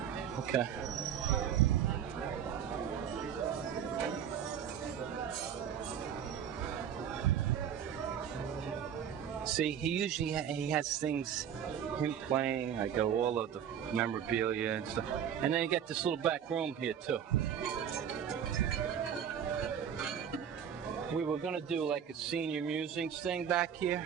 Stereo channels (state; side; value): quieter; left; 8.7 dB